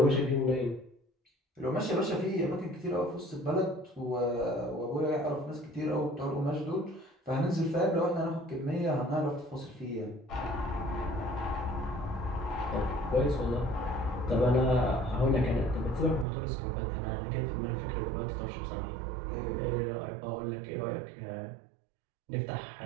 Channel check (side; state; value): left; drops out; at 16.2 s